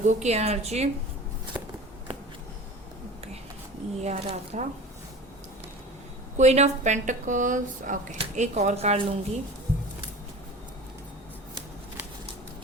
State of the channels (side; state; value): both; normal; correlation 0.37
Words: की एनर्जी। ओके, ये आ रहा था। क्वीन ऑफ पेंटिकल्स, ओके, एक और कार्ड लूंगी।